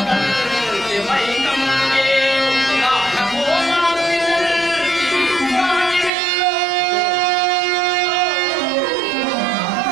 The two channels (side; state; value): left; drops out; at 6.1 s